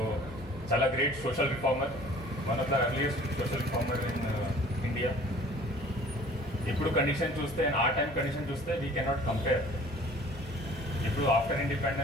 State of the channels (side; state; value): both; normal; correlation 0.49